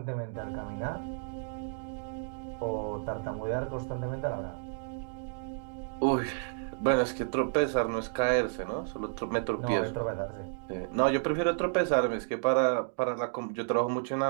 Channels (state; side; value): silent; left; digital silence